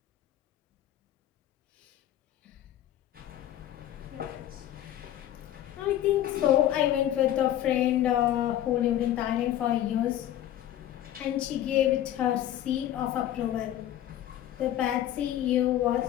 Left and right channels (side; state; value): right; quieter; 12.2 dB